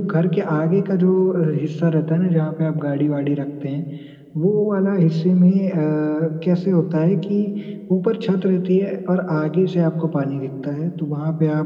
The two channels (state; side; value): identical; both; correlation 1.00